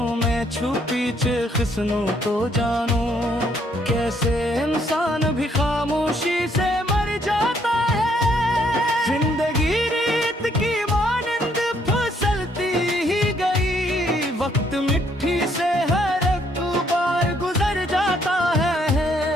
में छुपी खिसनों तो जानू, कैसे इंसान भी खामोशी से मर जाता है। जिंदगी रीत की मानंद फिसलती ही गई, वक्त मिट्टी से हर एक बार गुजर जाता है।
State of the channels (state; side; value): normal; both; correlation 0.69